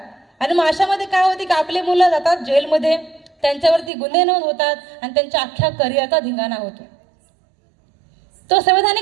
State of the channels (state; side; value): drops out; left; at 3.9 s